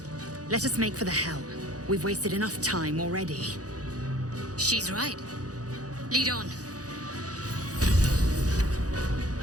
Let us make for the helm. We've wasted enough time already. She's right. Lead on.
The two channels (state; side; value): late; left; 0.67 ms